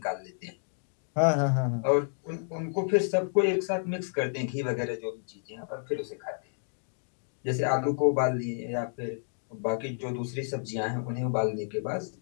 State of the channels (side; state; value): right; silent; digital silence